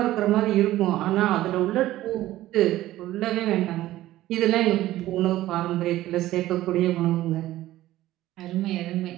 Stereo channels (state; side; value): quieter; left; 15.2 dB